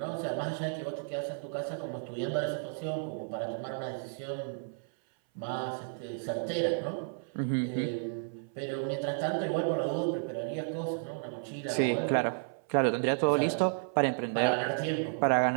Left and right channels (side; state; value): left; silent; 56 dB below the other